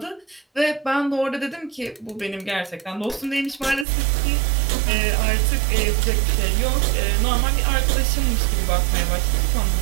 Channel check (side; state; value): left; drops out; at 3.9 s